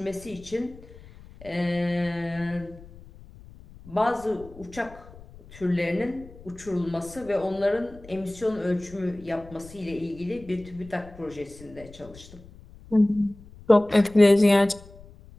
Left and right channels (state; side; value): noise; left; rumble, 20 dB below the sound